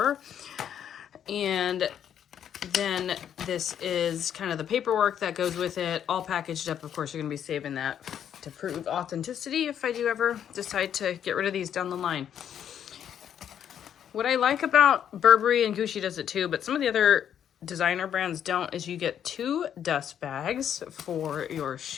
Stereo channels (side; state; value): right; quieter; 9.3 dB